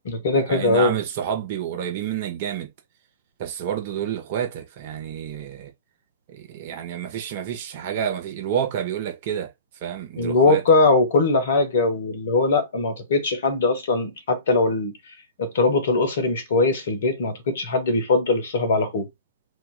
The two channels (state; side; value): inverted; both; correlation -0.38